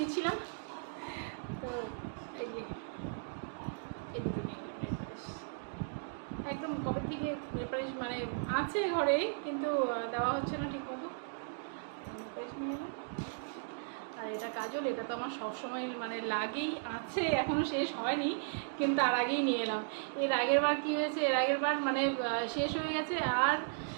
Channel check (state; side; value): silent; left; digital silence